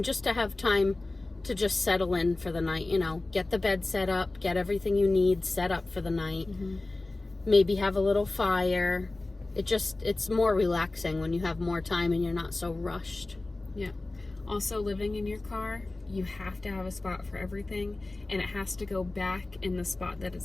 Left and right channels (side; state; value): right; quieter; 3.0 dB